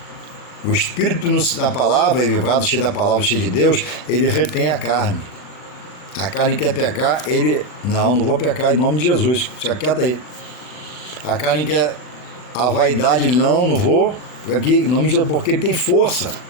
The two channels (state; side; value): late; right; 39 ms